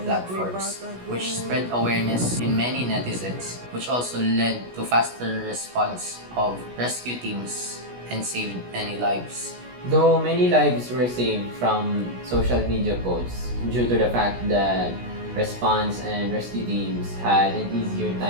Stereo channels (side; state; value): left; late; 16 ms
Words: platforms, which spread awareness in many netizens, which also led to faster response of rescue teams and saved many lives. Though many lives were saved from social media posts due to the fact that response and rescue teams had an easier